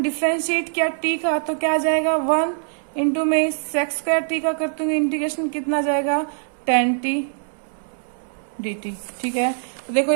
किया t का तो क्या आ जाएगा 1 इंटू में सेक्स स्क्वायर t का करते हुए इंटीग्रेशन कितना जाएगा 10t dt। ठीक है, तो देखो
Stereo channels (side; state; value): left; silent; 64 dB below the other